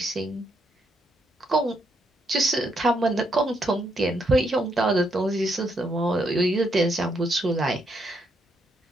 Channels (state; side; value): normal; both; correlation 0.76